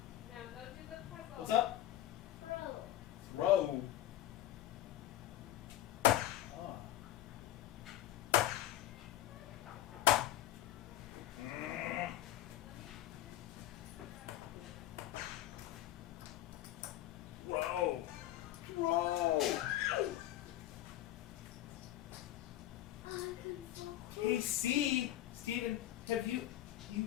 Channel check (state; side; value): quieter; right; 13.6 dB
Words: Now go do the puzzle. What's up? Throw. Hey, Steven, have you